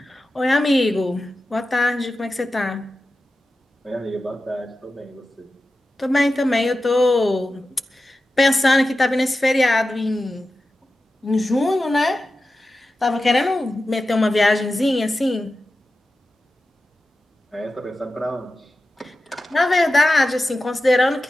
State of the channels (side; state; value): both; normal; correlation 0.93